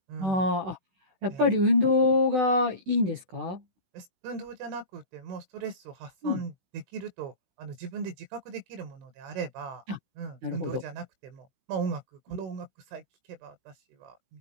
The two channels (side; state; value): left; late; 16 ms